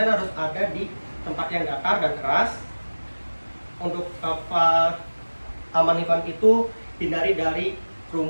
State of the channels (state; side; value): inverted; both; correlation -1.00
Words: ada di tempat yang datar dan keras. Untuk aman lingkungan itu hindari dari